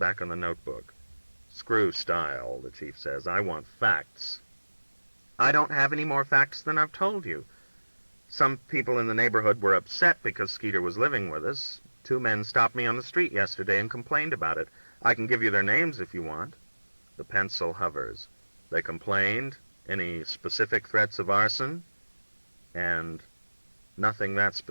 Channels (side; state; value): both; inverted; correlation -1.00